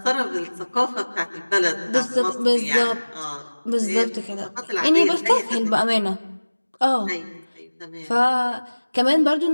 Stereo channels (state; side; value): inverted; both; correlation -1.00